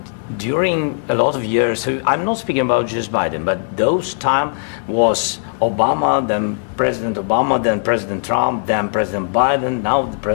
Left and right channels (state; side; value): silent; right; digital silence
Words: during a lot of years, so I'm not speaking about just Biden, but those time was Obama, then President Obama, then President Trump, then President Biden, now